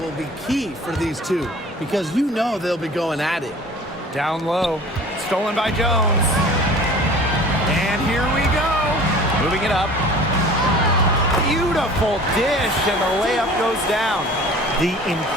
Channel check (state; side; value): normal; both; correlation 0.44